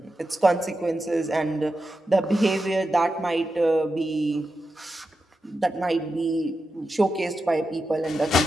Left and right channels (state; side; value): normal; both; correlation 0.90